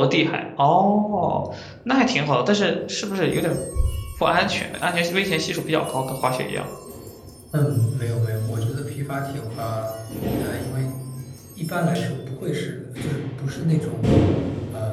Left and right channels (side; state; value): both; identical; correlation 1.00